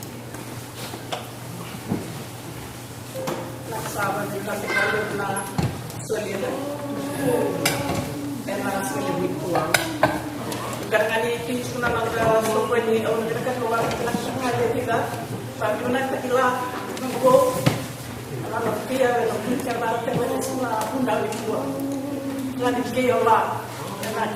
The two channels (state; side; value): identical; both; correlation 1.00